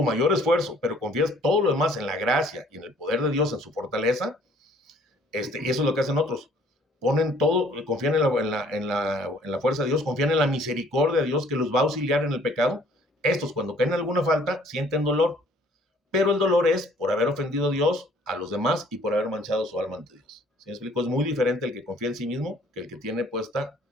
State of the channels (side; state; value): both; normal; correlation 0.58